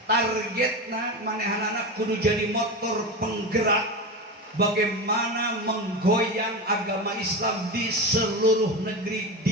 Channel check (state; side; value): normal; both; correlation 0.21